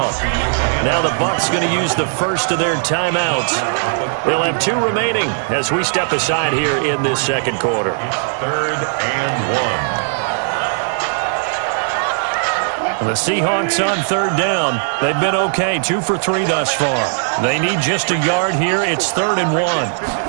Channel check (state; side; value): silent; left; digital silence